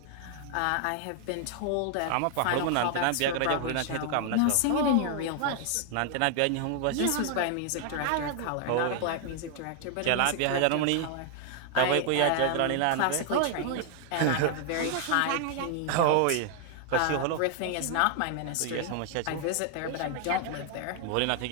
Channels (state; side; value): different; both; correlation 0.00